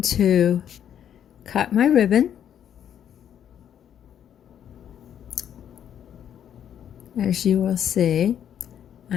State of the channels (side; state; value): right; quieter; 9.5 dB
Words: to cut my ribbon. As you will see,